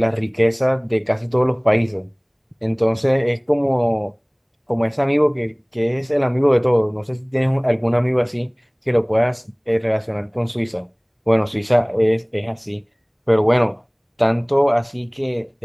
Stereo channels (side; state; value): both; identical; correlation 1.00